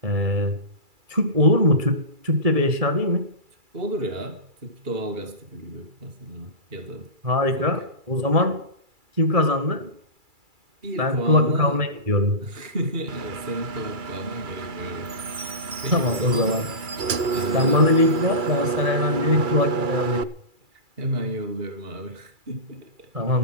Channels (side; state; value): left; late; 2.3 ms